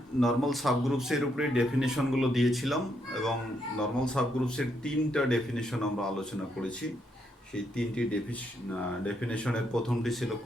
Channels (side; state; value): both; normal; correlation 0.77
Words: নর্মাল সাবগ্রুপসের উপরে ডেফিনেশনগুলো দিয়েছিলাম এবং নর্মাল সাবগ্রুপসের 3টা ডেফিনেশন আমরা আলোচনা করেছি। সেই 3টি ডেফিনেশনের প্রথমটি ছিল